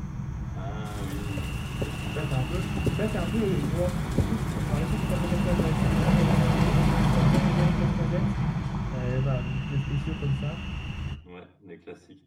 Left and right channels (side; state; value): both; identical; correlation 1.00